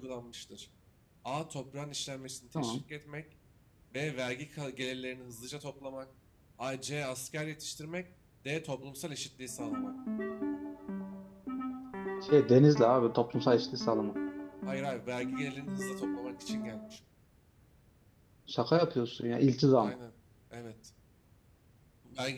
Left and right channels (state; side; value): identical; both; correlation 1.00